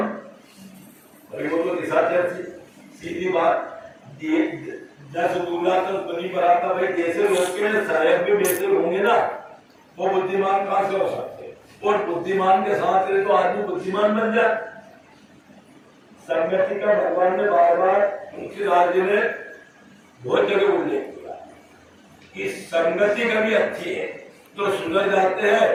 भाई वो तो निशाचर थी, सीधी बात, 10 दूल्हा तो बनी बराता, भाई जैसे लोग के शायद भी वैसे होंगे ना, वो बुद्धिमान कहाँ से हो सकते, और बुद्धिमान के साथ रहे तो आदमी बुद्धिमान बन जाए। संगति का भगवान ने बार बार तुलसीदास जी ने बहुत जगह उल्लेख किया कि संगति कभी अच्छी है तो सुधर जाते हैं।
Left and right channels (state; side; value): identical; both; correlation 1.00